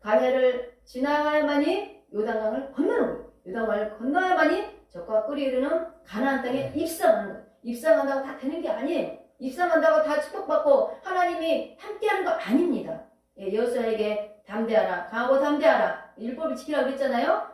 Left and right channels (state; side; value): identical; both; correlation 1.00